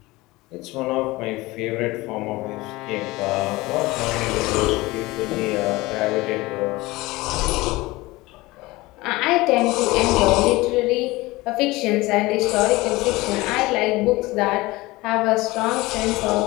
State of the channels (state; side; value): quieter; right; 20.7 dB